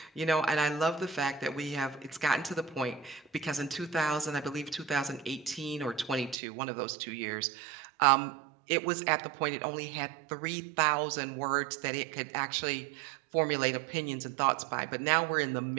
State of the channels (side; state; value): left; drops out; at 6.4 s